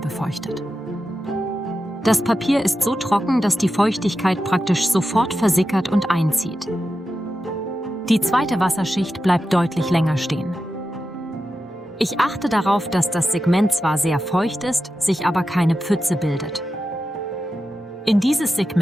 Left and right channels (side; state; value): both; normal; correlation 0.91